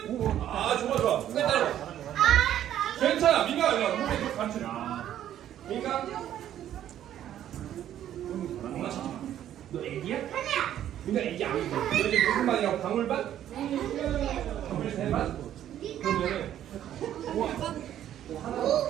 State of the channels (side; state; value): left; quieter; 11.3 dB